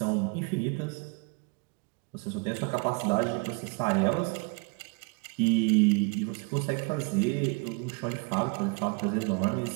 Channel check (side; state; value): left; quieter; 32.9 dB